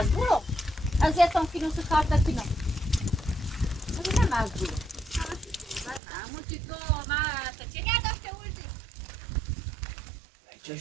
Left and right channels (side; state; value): left; drops out; at 6.0 s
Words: از یتون کنم تو کار تکنم من مجبورم اما چی تو من چه داشته بودی